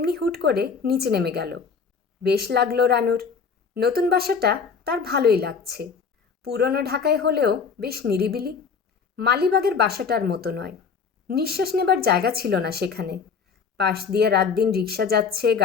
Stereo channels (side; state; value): right; quieter; 5.7 dB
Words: হুট করে নিচে নেমে গেল। বেশ লাগলো রানুর। নতুন বাসাটা তার ভালোই লাগছে। পুরনো ঢাকায় হলেও বেশ নিরিবিলি। মালিবাগের বাসাটার মতো নয়। নিঃশ্বাস নেবার জায়গা ছিল না সেখানে। পাশ দিয়ে রাত দিন রিক্সা যাচ্ছে,